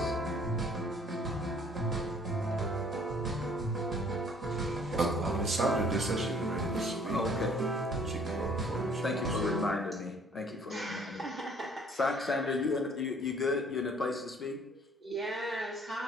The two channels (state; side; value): normal; both; correlation 0.57